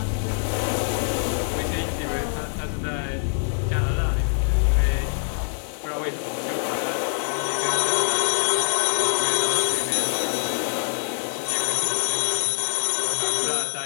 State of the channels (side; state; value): right; silent; digital silence